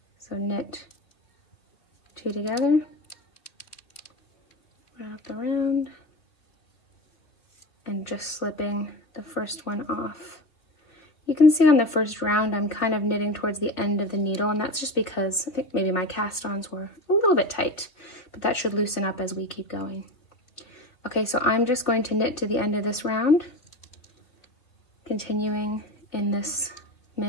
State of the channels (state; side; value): late; right; 3.2 ms